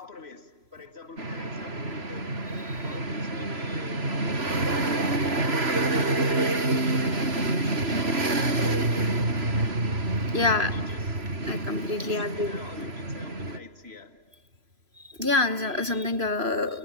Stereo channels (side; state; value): left; late; 3.0 ms